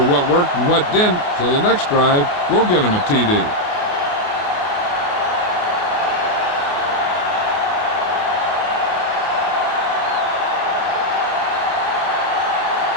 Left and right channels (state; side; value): late; right; 28 ms